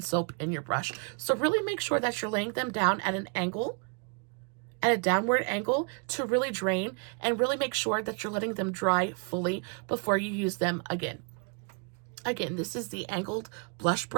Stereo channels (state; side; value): quieter; left; 39.6 dB